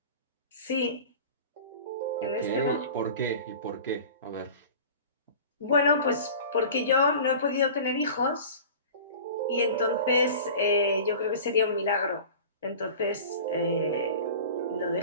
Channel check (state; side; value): inverted; both; correlation -0.38